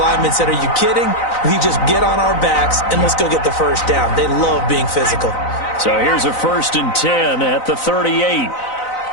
said, are you kidding? We just get on our backs and let's go get the first down. They love being physical. So here's a 1st and 10 at the 38. Right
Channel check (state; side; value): late; right; 4.0 ms